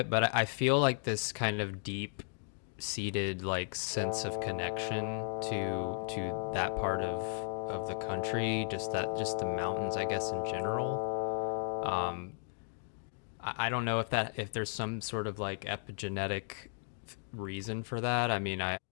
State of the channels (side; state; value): right; silent; digital silence